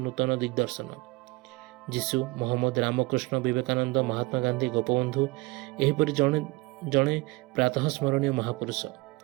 दिग्दर्शन। जीशु मोहम्मद रामकृष्ण विवेकानंद महात्मा गांधी गोपबंधु एहिपरि जणे प्रातः स्मरणीय महापुरुष।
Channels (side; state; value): left; quieter; 23.4 dB